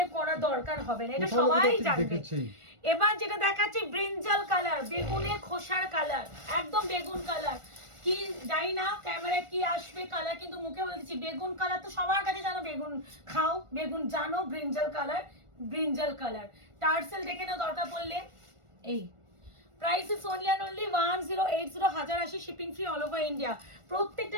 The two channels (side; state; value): left; late; 1.4 ms